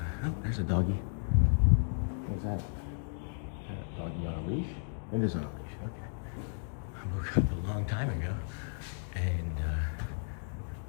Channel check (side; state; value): right; silent; digital silence